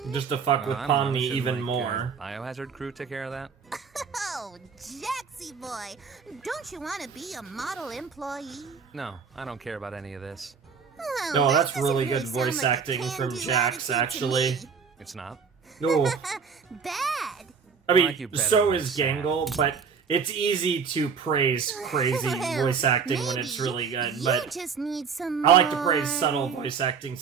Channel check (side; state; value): left; quieter; 6.0 dB